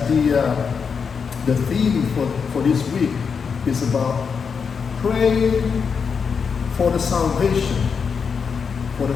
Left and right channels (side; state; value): right; quieter; 6.0 dB